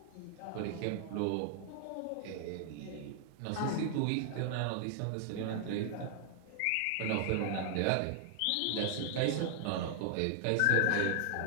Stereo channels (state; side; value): different; both; correlation -0.01